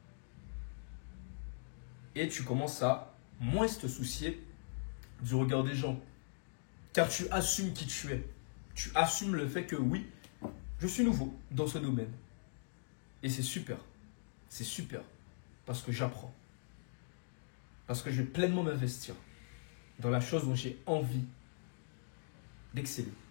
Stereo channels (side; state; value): right; silent; digital silence